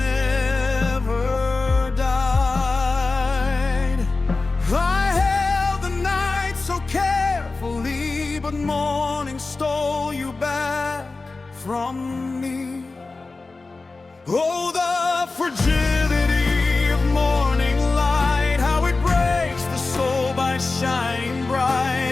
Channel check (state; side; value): quieter; right; 3.7 dB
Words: died. I held the night so carefully, but morning stole you back from me. Oh, the fragility of morning light, how it breaks the soul by shining